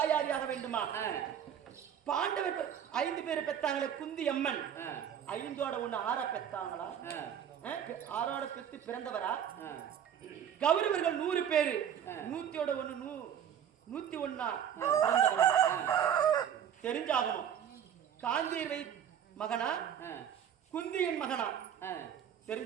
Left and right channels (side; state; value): left; quieter; 9.1 dB